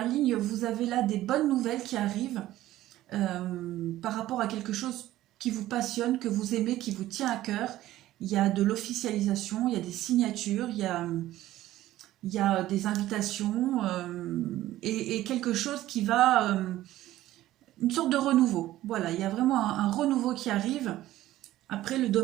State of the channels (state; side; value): quieter; left; 14.8 dB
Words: ligne, vous avez là des bonnes nouvelles qui arrivent par rapport à quelque chose qui vous passionne, que vous aimez, qui vous tient à cœur. Il y a de l'officialisation, il y a des signatures, il y a des invitations et quelque chose qui va... une sorte de renouveau. Voilà, il y a vraiment un renouveau qui arrive. Après, le